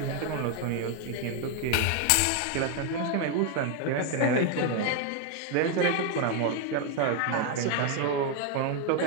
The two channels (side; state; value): both; different; correlation 0.01